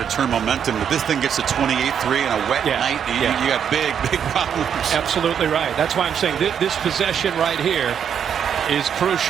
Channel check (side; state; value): left; quieter; 8.2 dB